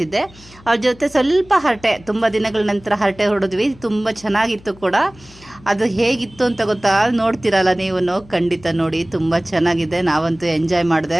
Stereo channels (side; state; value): left; noise; hum, 24 dB below the sound